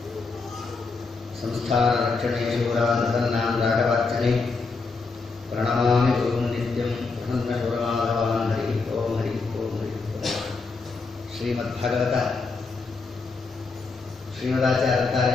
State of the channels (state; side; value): quieter; right; 4.2 dB